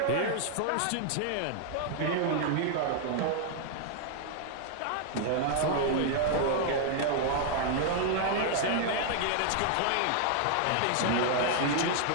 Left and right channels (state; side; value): different; both; correlation 0.00